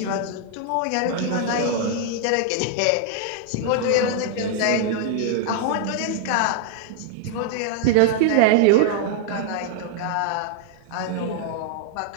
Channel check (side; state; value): both; different; correlation -0.01